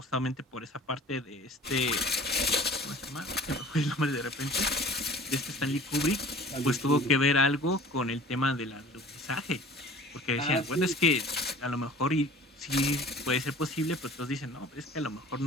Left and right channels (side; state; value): both; normal; correlation 0.45